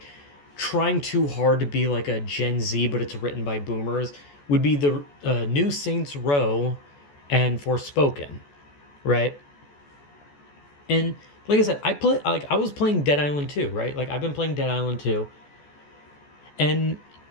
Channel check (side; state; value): right; late; 14 ms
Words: trying too hard to be like a Gen Z, but it's written by boomers, would be the new Saints Row and Forspoken, right? And like I said, I was playing Dead Island 2, right? Like I've been playing Dead Island 2, and